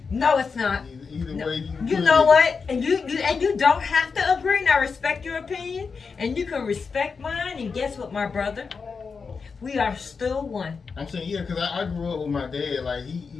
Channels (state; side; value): quieter; right; 5.2 dB